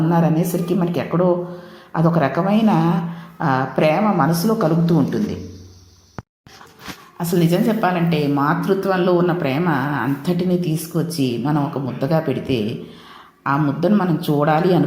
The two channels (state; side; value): identical; both; correlation 1.00